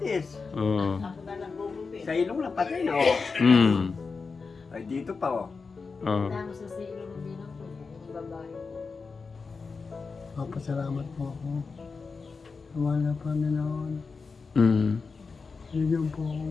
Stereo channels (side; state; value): right; quieter; 4.7 dB